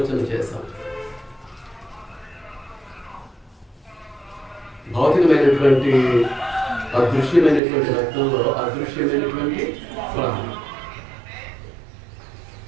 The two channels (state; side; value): drops out; left; at 7.6 s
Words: చేస్తాం. భౌతికమైనటువంటి అదృశ్యమైనటువంటి రక్తంలో అదృశ్యమైనటువంటి ప్రాణం,